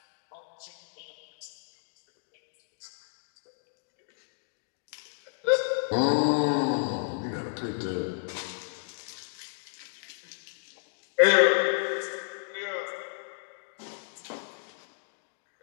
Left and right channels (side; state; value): right; silent; digital silence